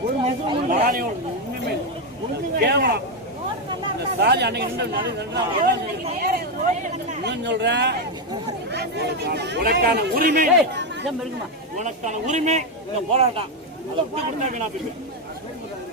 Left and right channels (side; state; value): both; normal; correlation 0.06